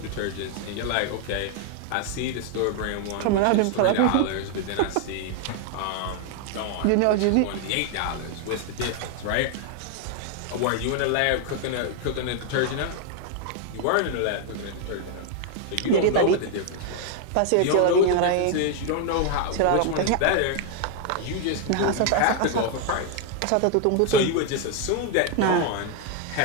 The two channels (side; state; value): both; different; correlation 0.00